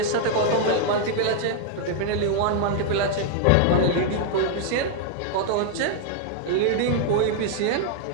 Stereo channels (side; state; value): both; different; correlation 0.00